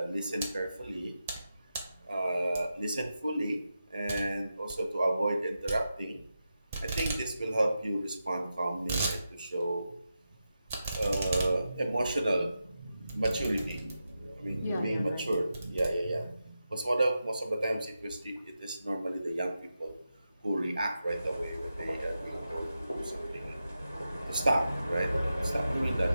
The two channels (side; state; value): both; inverted; correlation -0.90